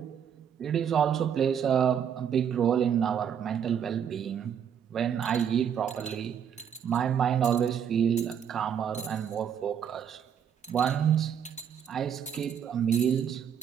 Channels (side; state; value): left; quieter; 8.4 dB